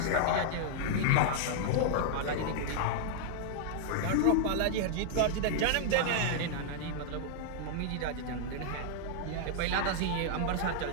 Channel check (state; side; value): different; both; correlation -0.01